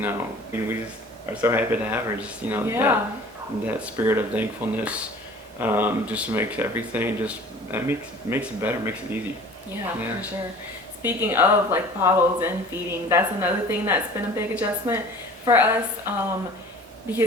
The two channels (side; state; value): both; normal; correlation 0.45